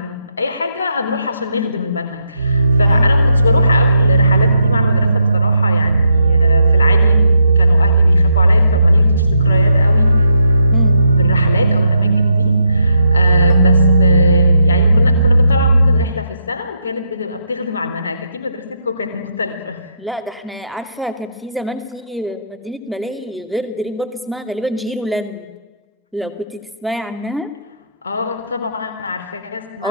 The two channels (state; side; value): inverted; both; correlation -0.77